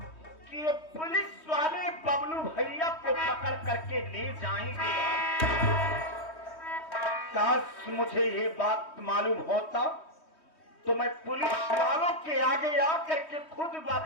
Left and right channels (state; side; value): late; right; 3.2 ms